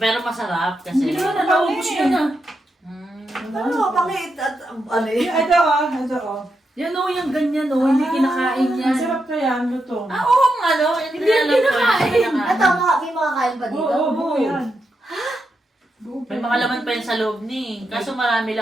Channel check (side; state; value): both; normal; correlation 0.85